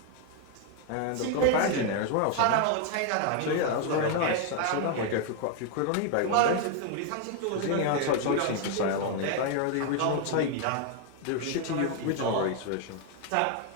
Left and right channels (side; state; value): both; different; correlation 0.01